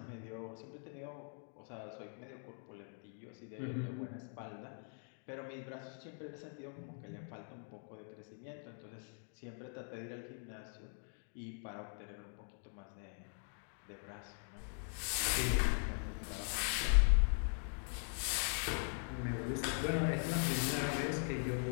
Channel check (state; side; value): silent; right; 50 dB below the other